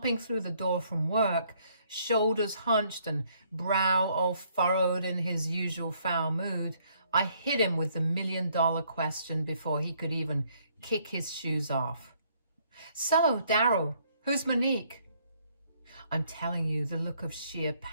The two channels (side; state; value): both; inverted; correlation -0.67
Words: through the door from work, shoulders hunched and brow all furrowed in his usual foul mood, I hit him with the $1,000,000 question before he could even kick his shoes off. So, Daryl, who's Monique? I'm telling you, the look of sheer